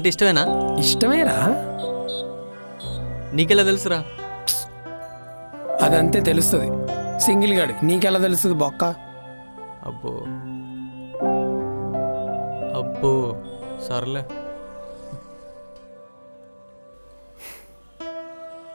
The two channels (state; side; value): inverted; both; correlation -1.00